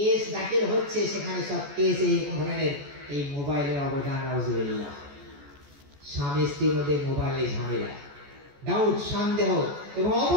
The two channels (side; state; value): left; late; 14 ms